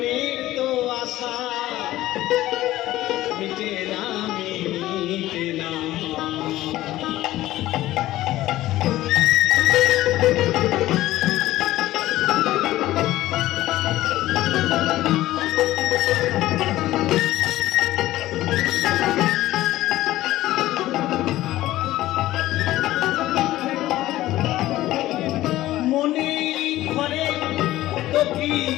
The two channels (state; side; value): quieter; right; 15.6 dB